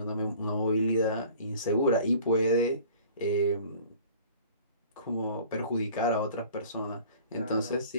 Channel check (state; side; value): inverted; both; correlation -0.48